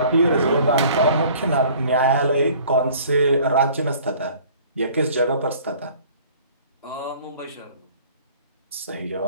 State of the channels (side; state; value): both; inverted; correlation -0.52